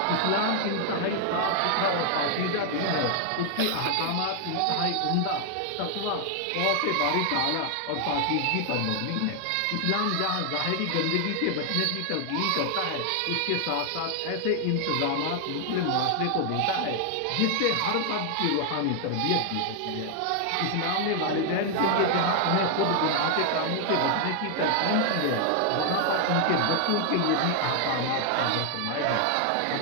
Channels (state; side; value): different; both; correlation 0.00